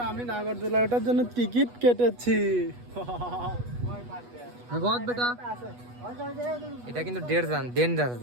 আমি নাগরদোলা ওঠার জন্য টিকিট কেটেছি। বহুত বেটা, এটা কিন্তু ডেঞ্জার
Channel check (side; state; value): left; late; 8.2 ms